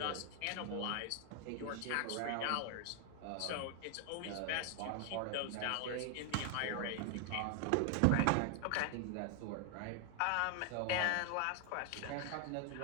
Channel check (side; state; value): both; different; correlation 0.00